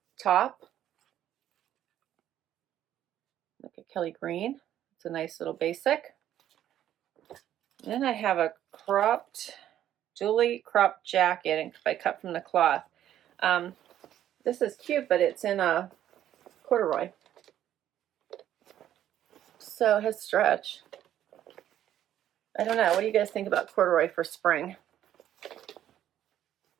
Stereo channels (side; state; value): left; quieter; 11.5 dB